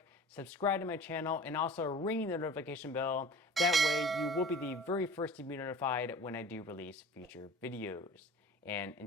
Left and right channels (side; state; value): both; normal; correlation 0.42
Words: subscribe to my channel, and also ring the notification bell. That way you will be the very first to be notified when I do release future videos. And